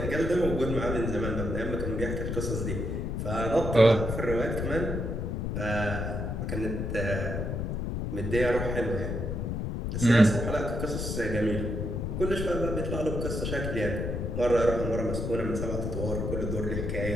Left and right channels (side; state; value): left; noise; rumble, 2 dB below the sound